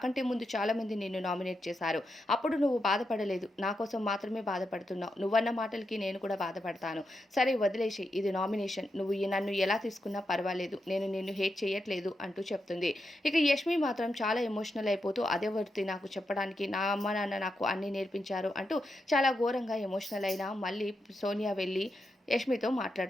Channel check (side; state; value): both; normal; correlation 0.85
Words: ముందు చాలా మంది నిన్ను నామినేట్ చేశారు, అప్పుడు నువ్వు బాధపడలేదు, నా కోసం మాత్రమే బాధపడుతున్నావు, నువ్వన్న మాటలకి నేను కూడా బాధపడతాను, సరే వదిలేసి, ఇది నామినేషన్, నువ్వు నన్ను ఎలా తీసుకున్నా పర్వాలేదు, నేను నిన్ను హేట్ చేయట్లేదు అంటూ చెప్తుంది. ఇక యష్మి మాత్రం చాలా ఎమోషనల్ అయిపోతూ అదే వర్తి నాకు చెప్పడానికి, నా అమ్మ నాన్న నాకు అన్నీ నేర్పించారు అంటూ చాలా ఘోరంగా ఎమోషనల్ అయినా మళ్ళీ సోనియా వెళ్ళి యష్మితో